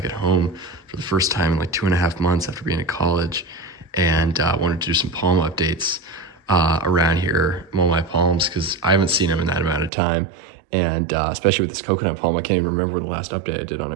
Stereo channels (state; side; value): drops out; left; at 9.9 s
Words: at home for the first time in like 2.5 months after being at college, and wanted to do some palm updates around here, mow my palms, because I haven't seen them in that amount of time. And especially with this coconut palm, I can't even remember when the last update I did on